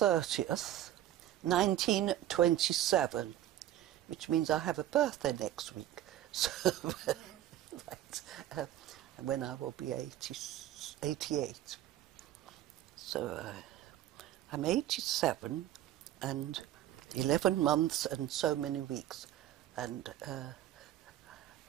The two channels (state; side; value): quieter; left; 12.8 dB